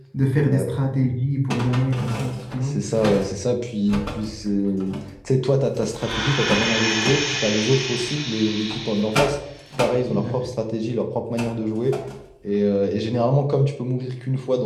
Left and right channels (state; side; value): identical; both; correlation 1.00